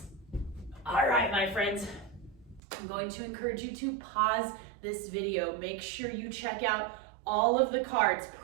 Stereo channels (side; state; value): left; drops out; at 2.6 s